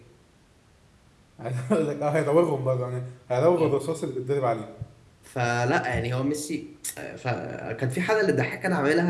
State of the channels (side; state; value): both; identical; correlation 1.00